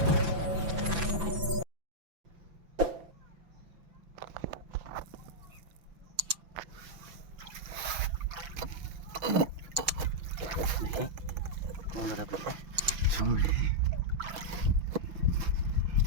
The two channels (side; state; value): left; late; 5.9 ms